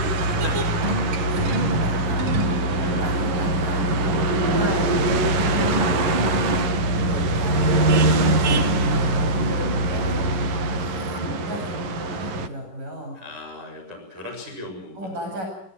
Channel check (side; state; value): left; late; 11 ms